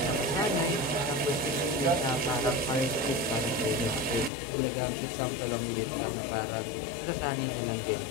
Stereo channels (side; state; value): right; drops out; at 4.3 s